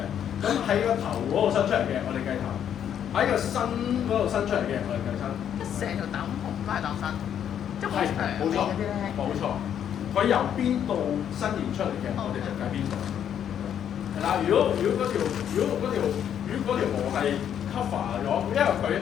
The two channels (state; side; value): quieter; right; 9.3 dB